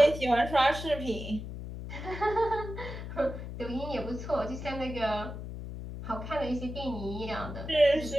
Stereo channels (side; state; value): left; noise; hum, 8 dB below the sound